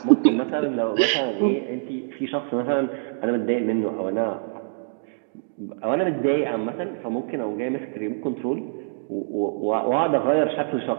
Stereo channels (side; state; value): left; silent; digital silence